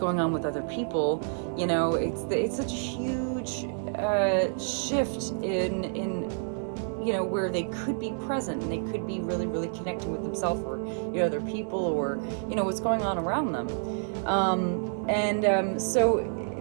on with other people, it's such a huge shift in where they could be present and they could be really, really connecting with themselves, or other people, or what's going on around them. So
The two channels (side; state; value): left; silent; digital silence